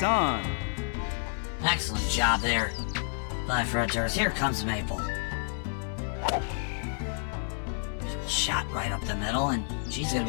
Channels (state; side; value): silent; right; 58 dB below the other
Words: on. Excellent job there by Brett Durst. Here comes Maple. Shot right up the middle, and she's going